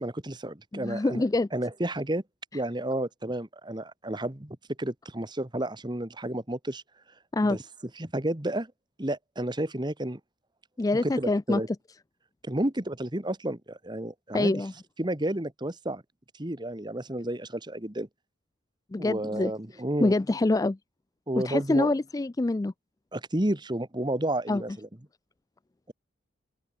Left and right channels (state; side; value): normal; both; correlation 0.76